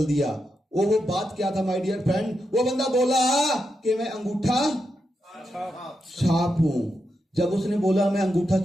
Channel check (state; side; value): normal; both; correlation 0.85